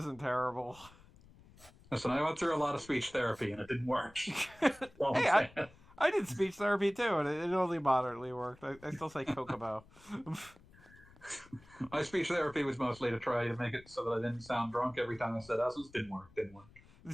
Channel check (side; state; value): left; noise; rumble, 24 dB below the sound